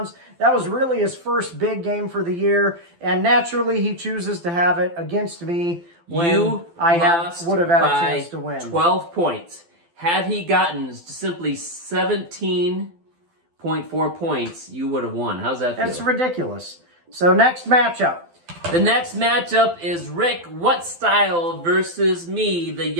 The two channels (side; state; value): left; late; 12 ms